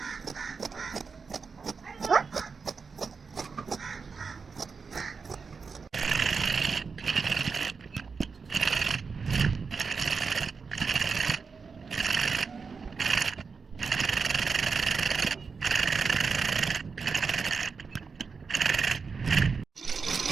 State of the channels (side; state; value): left; quieter; 5.1 dB